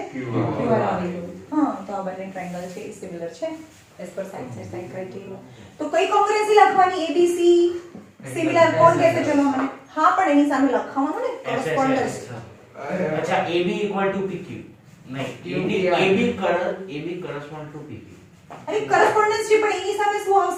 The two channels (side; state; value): both; identical; correlation 1.00